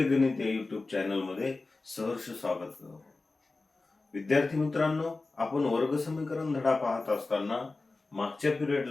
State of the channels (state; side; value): quieter; right; 3.5 dB